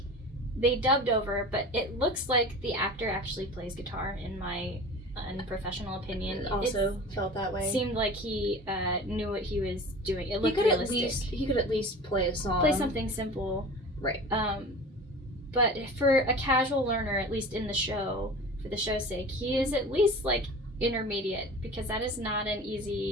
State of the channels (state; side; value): normal; both; correlation 0.37